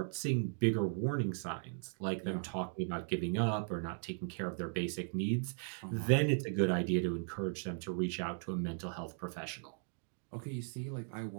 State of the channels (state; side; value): silent; left; 53 dB below the other